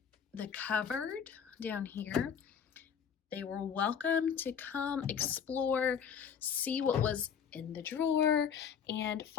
the cupboard down here. They were welcome to come explore, see what was in the drawer, and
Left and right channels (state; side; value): quieter; right; 7.5 dB